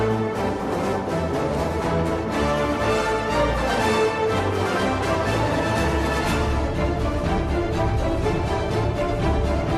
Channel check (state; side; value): identical; both; correlation 1.00